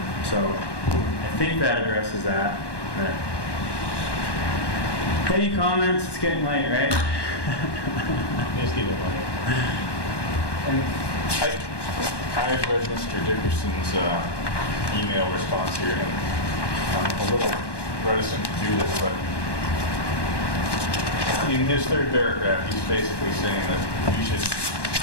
So I think that addresses that. Any comments? It's getting late, right? Just keep it late. And I've read Mr. Dickerson's email response here, and I'm a little reticent to do this, but in his third paragraph, he's basically saying that we should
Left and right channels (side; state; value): right; late; 1.2 ms